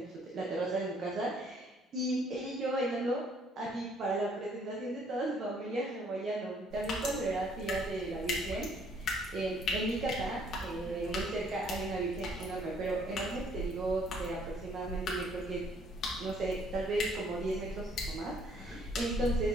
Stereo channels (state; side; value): normal; both; correlation 0.63